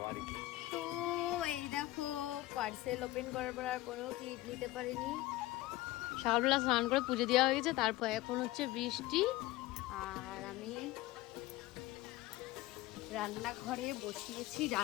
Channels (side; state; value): right; quieter; 17.7 dB